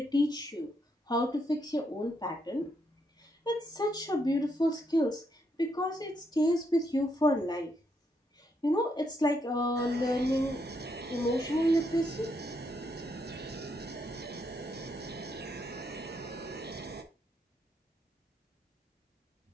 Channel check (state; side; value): normal; both; correlation 0.77